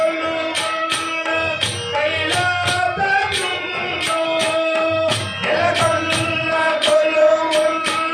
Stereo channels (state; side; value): identical; both; correlation 1.00